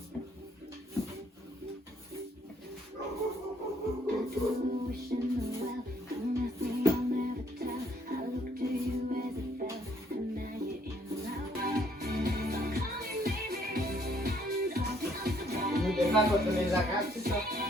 Nous défendre contre les arabes, c'est ça?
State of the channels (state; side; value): normal; both; correlation 0.66